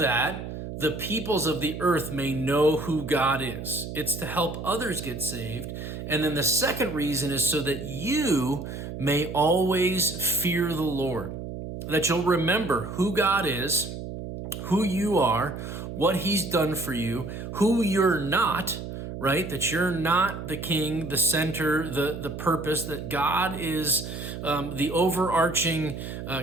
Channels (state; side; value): noise; right; hum, 8 dB below the sound